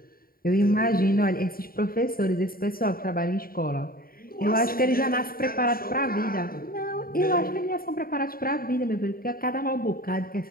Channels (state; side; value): late; right; 0.43 ms